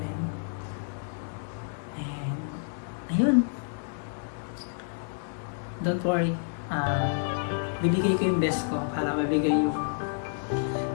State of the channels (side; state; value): right; silent; digital silence